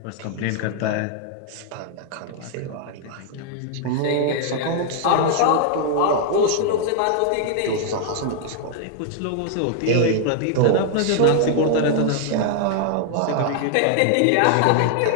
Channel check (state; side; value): different; both; correlation 0.00